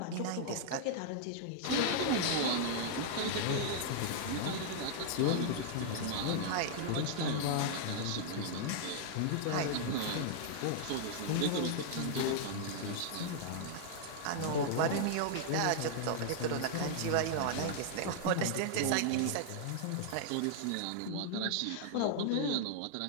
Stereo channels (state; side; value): different; both; correlation -0.01